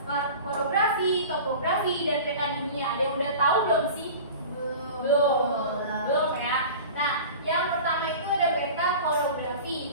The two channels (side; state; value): both; inverted; correlation -0.37